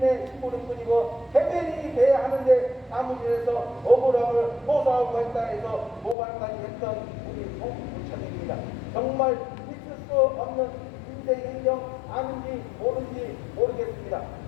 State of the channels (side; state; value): right; drops out; at 6.2 s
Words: 힘으로 뿐이고 대변인이 돼야 하는데 사무실에서 억울함을 호소하고 했다 해서 모발까지 했던 우리 정부구청입니다. 정말 있을 수 없는 인생 행정 아는지 모르는지 모르겠습니다.